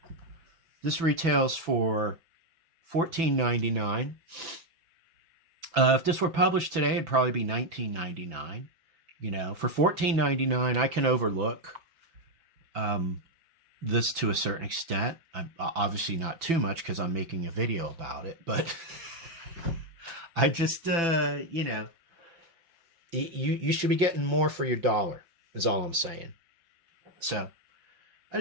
This retails for $14.99. If this were published today, it'd probably be $19.99. You know, for $14.99, I can overlook this to a certain extent. Obviously not too much because I'm making a video about it, but I just, you know, you should be getting more for your dollar is all I'm saying. So I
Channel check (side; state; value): left; late; 6.0 ms